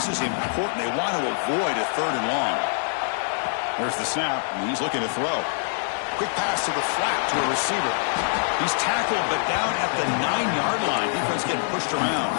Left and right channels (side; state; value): right; silent; digital silence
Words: is important. They want to avoid a third and long. There's the snap, and he's looking to throw. Quick pass to the flat to a receiver. He's tackled, but down at the 9-yard line. Defense getting pushed around.